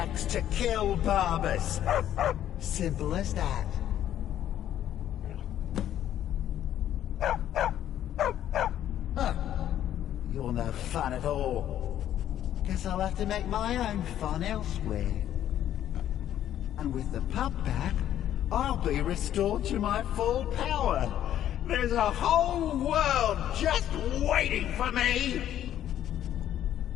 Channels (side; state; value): right; quieter; 11.3 dB